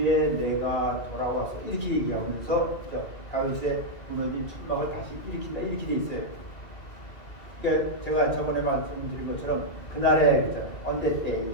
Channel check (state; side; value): late; right; 2.4 ms